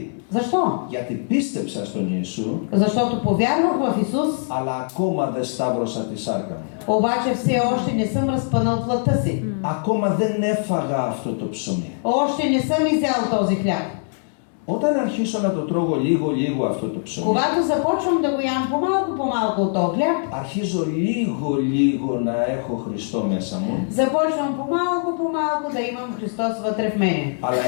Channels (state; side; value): silent; right; 64 dB below the other